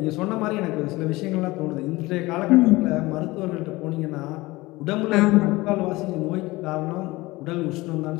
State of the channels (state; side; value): quieter; right; 20.7 dB